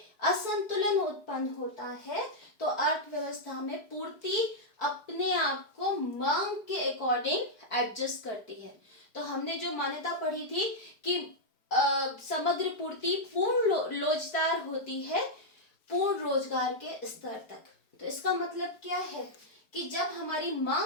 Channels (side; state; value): right; late; 4.8 ms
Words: असंतुलन उत्पन्न होता है तो अर्थव्यवस्था में पूर्ति अपने आप को मांग के अकॉर्डिंग एडजस्ट करती है। तो हमने जो मान्यता पढ़ी थी कि समग्र पूर्ति पूर्ण लोचदार होती है पूर्ण रोजगार के स्तर तक। तो इसका मतलब क्या है कि जब हमारी